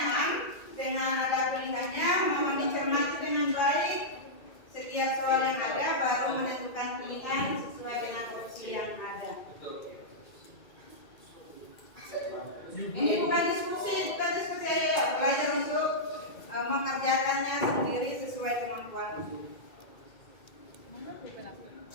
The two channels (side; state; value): right; late; 2.2 ms